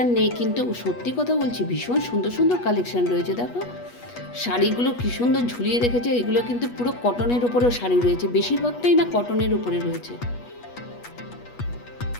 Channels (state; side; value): late; right; 8.3 ms